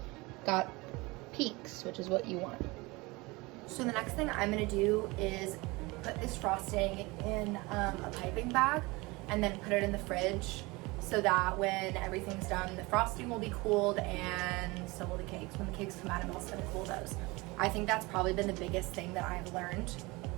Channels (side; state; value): left; quieter; 23.8 dB